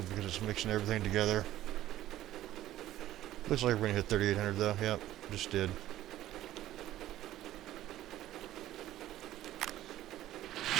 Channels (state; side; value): quieter; left; 13.9 dB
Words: because it's mixing everything together. Looks like we're gonna hit 3,800 though. Yep, just did.